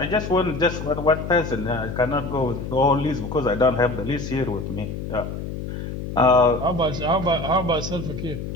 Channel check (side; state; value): left; noise; hum, 7 dB below the sound